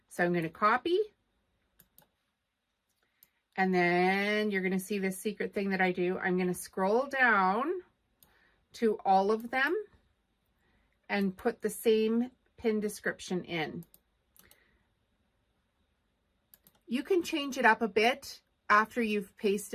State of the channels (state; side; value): identical; both; correlation 1.00